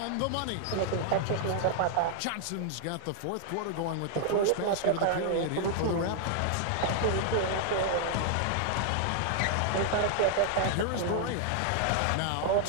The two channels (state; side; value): different; both; correlation -0.01